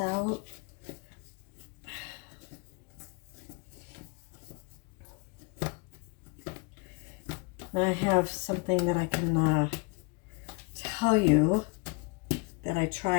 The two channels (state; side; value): quieter; right; 30.3 dB